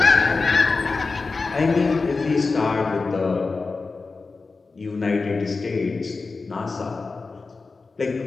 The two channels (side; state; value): right; quieter; 4.1 dB